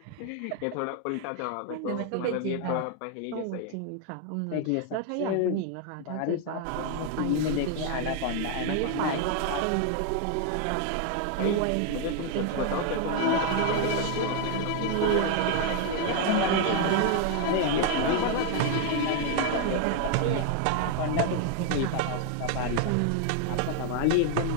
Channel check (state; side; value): different; both; correlation 0.00